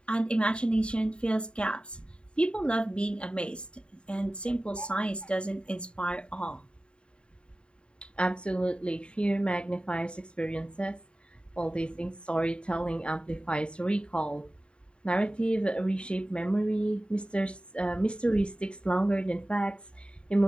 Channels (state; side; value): late; right; 0.054 ms